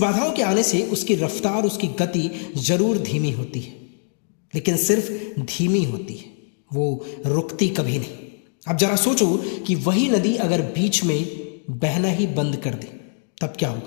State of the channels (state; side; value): silent; right; digital silence